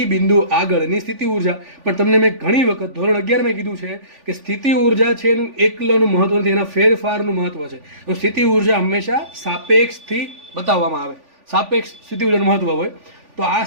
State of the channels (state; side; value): late; left; 3.5 ms